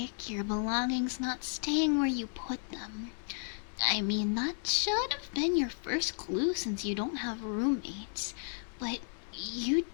your belongings not staying where you put them. I mean, that should have been your first clue since you don't have roommates. But you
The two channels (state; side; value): silent; right; 55 dB below the other